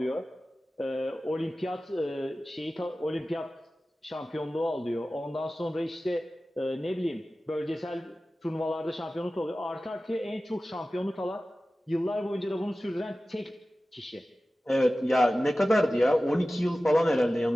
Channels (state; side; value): normal; both; correlation 0.96